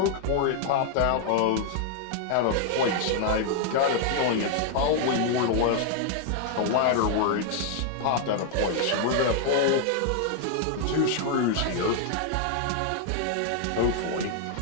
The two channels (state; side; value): different; both; correlation 0.00